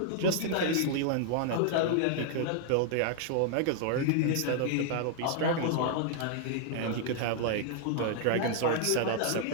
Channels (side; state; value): both; different; correlation 0.00